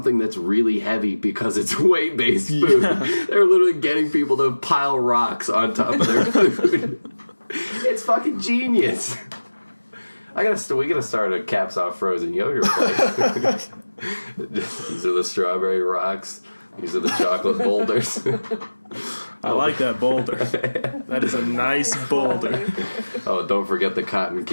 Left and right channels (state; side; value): inverted; both; correlation -1.00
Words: that's really heavy because it's weight-based food. Yeah. They're literally getting people to pile rocks on top of their food. It's fucking genius. We gotta start a Caps Off Frozen yogurt place. These are the strawberry rocks. These are the chocolate boulders. I like that boulder. That is a nice boulder. Oh, don't forget the cotton